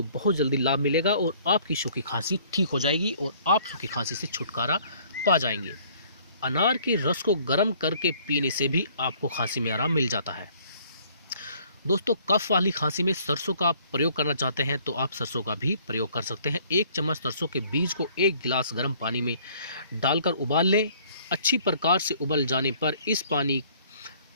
बहुत जल्दी लाभ मिलेगा और आपकी सूखी खांसी ठीक हो जाएगी और आप सूखी खांसी से छुटकारा पा जाएंगे। अनार के रस को गर्म करके पीने से भी आपको खांसी में आराम मिल जाता है। दोस्तों, कफ वाली खांसी में सरसों का प्रयोग करना चाहते हैं तो आप सरसों का भी प्रयोग कर सकते हैं। 1 चम्मच सरसों के बीज को 1 गिलास गर्म पानी में डालकर उबाल लें। अच्छी प्रकार से उबल जाने पर इस पानी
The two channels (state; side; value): inverted; both; correlation -0.58